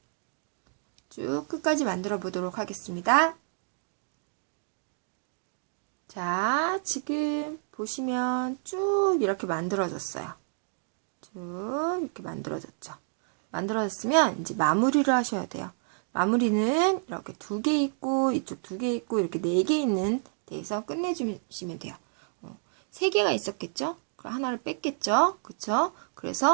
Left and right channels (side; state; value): left; silent; digital silence